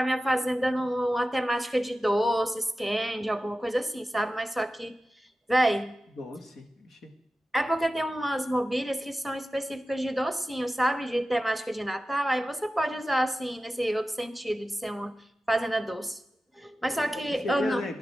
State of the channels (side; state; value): both; normal; correlation 0.94